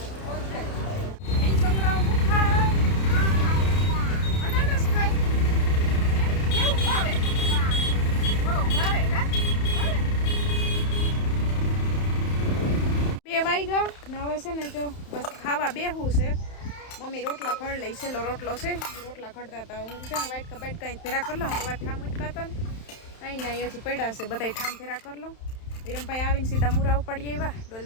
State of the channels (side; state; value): right; late; 31 ms